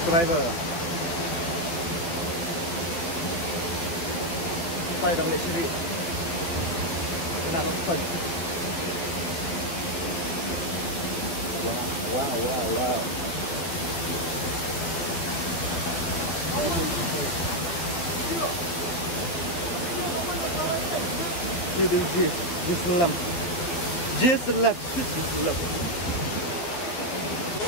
Sampai dong Jesir. Kena lepas. Wow. Just left.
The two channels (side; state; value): right; late; 12 ms